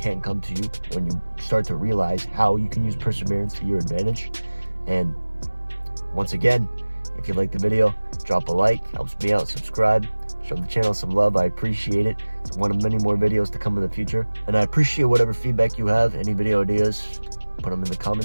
come to you when you start to realize how you can use perseverance to your advantage. And once again, if you like the video, drop a like, helps me out, subscribe, show the channel some love. I appreciate it. It's one of many more videos to come in the future, and I appreciate whatever feedback you have. Any video ideas, put them in the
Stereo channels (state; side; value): inverted; both; correlation -1.00